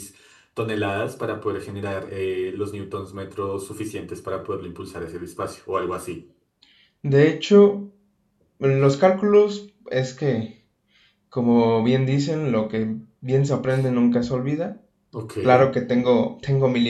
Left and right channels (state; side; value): identical; both; correlation 1.00